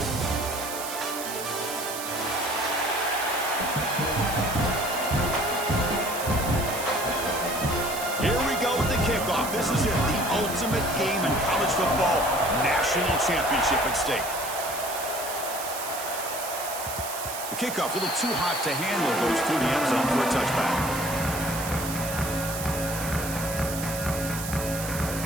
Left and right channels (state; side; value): noise; right; hiss, 7 dB below the sound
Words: This is it, the ultimate game in college football, national championship at stake. The kickoff a little too hot to handle, goes through the end zone for a touchback.